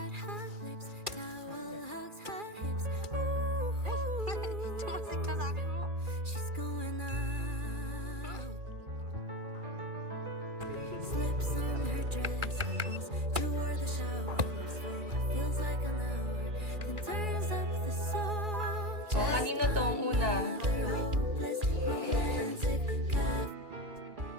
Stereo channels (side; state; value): left; late; 2.4 ms